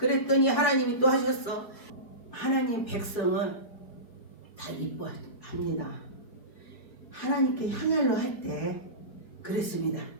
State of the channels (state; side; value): late; right; 4.7 ms